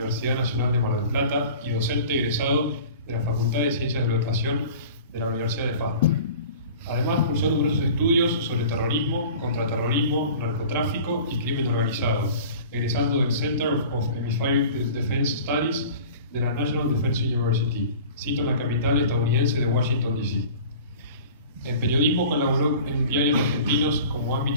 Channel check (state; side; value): inverted; both; correlation -0.42